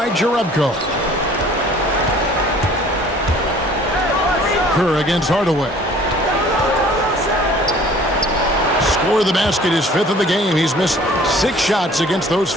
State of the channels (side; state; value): both; normal; correlation 0.52